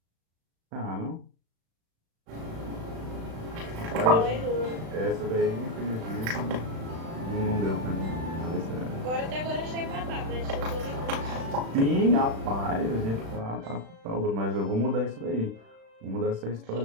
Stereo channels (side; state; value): left; late; 36 ms